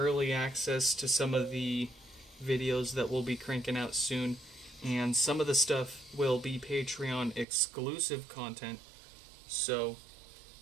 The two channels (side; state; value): left; drops out; at 7.5 s